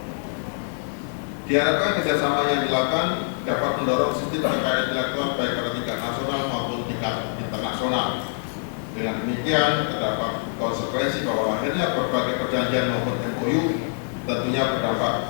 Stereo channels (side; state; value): right; silent; digital silence